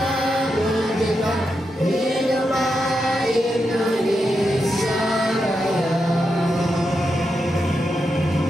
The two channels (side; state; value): both; normal; correlation 0.86